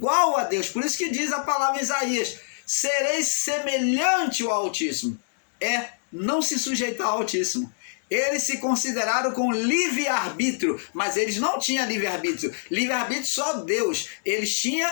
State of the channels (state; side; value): silent; right; digital silence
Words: a Deus. Por isso que diz a palavra em Isaías: sereis semelhante ao Altíssimo. É não se sujeitar ao Altíssimo. Eles se consideraram com livre-arbítrio, mas eles não tinham livre-arbítrio. Livre-arbítrio só Deus. Eles tinham